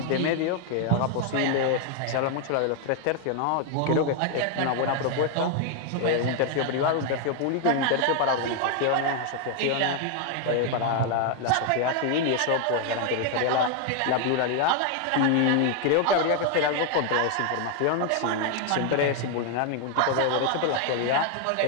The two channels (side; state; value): both; different; correlation 0.00